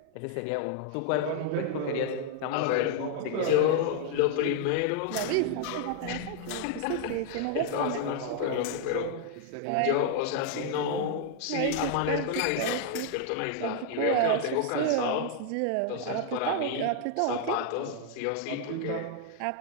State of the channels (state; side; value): different; both; correlation 0.00